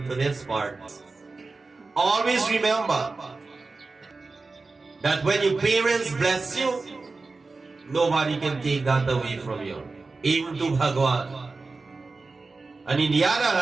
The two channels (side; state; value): left; quieter; 3.8 dB